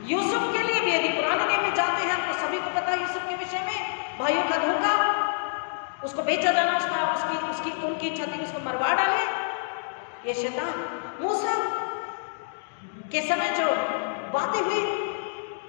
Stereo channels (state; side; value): silent; right; digital silence